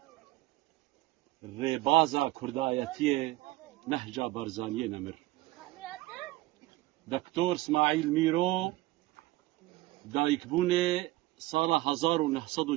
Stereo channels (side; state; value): left; quieter; 18.5 dB